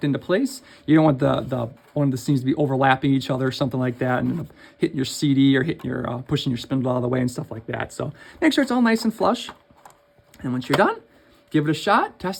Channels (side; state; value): both; identical; correlation 1.00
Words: into place. You don't want the one of the seams to be overlapping each other or something like that, and hitting your CD or hitting your pushing your spindle out of the way and stuff like that. So make sure it's all nice and flush. And once you're done, give it a shot,